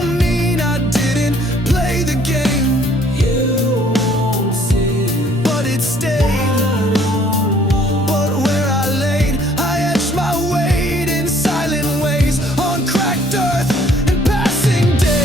mean I didn't play the game. You won't see, but it stayed. But where I laid, I etched my weight in silent ways, on cracked earth and passing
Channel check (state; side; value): normal; both; correlation 0.60